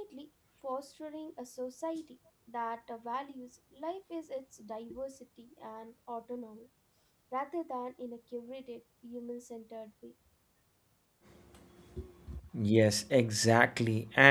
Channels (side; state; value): both; identical; correlation 1.00